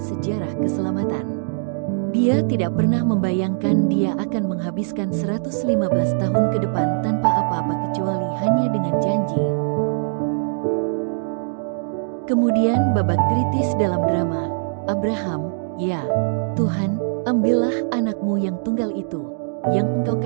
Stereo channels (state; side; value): silent; left; digital silence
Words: keselamatan. Dia tidak pernah membayangkan dia akan menghabiskan 115 tahun ke depan tanpa apa-apa kecuali hanya dengan janji. Kemudian babak kritis dalam drama, Abraham, ya, Tuhan, ambillah anakmu yang tunggal itu, yang Engkau